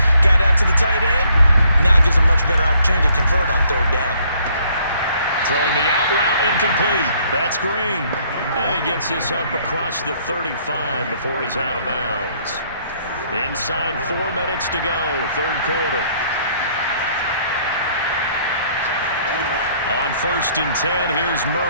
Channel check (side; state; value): both; inverted; correlation -0.64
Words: Got out to the tight end. Now it gives a much better opportunity to convert on third down. Throwing the out route, incomplete. That's Green. And he gets this up across the 35 before he's out of bounds. Inside 4 minutes to go, third quarter. On 1st and 10, here's